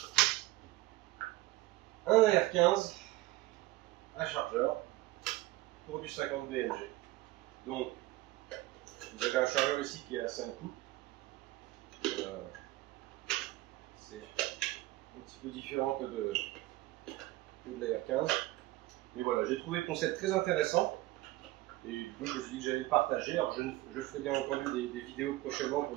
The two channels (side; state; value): left; quieter; 18.2 dB